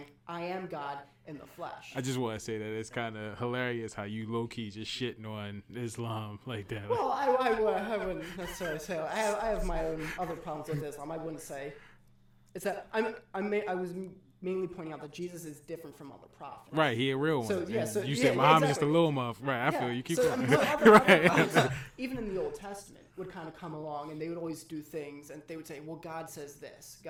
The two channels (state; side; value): identical; both; correlation 1.00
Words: I am God in the flesh. I just want to say that it's kind of hilarious how you low-key just shitting on Islam like that. Well, I wouldn't necessarily say I have my own other problems with Islam. I wouldn't say it's that I was mainly pointing out that Jesus is different from other prophets. Right, he a real one. So yeah, so you said Muhammad is the little muff. Right, I feel you. Keep going. Other prophets, even in the Old Testament, would kind of come along and they would always do things, and they would say, "Well, God says this,